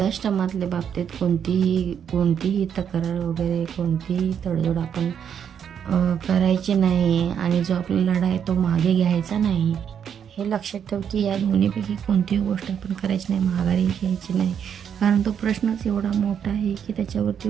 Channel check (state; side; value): quieter; left; 8.2 dB